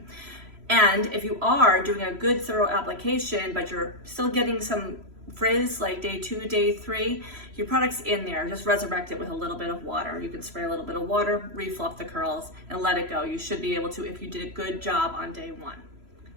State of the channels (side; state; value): left; late; 3.0 ms